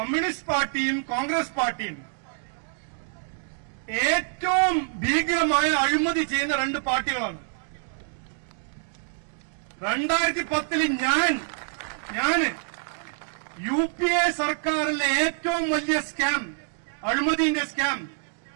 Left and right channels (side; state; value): left; silent; digital silence